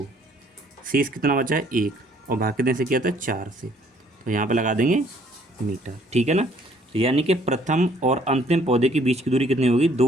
शेष कितना बचा है 1, और भाग कितने से किया था 4 से। तो यहाँ पे लगा देंगे मीटर, ठीक है ना। तो यानी कि प्रथम और अंतिम पौधे के बीच की दूरी कितनी होगी,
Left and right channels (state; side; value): normal; both; correlation 0.62